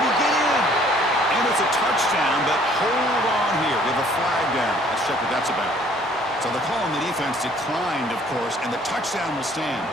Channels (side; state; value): both; normal; correlation 0.58